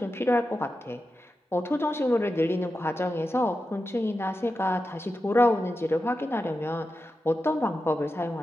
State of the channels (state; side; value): normal; both; correlation 0.90